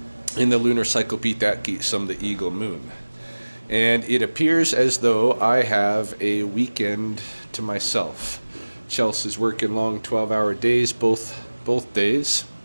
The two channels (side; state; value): both; inverted; correlation -1.00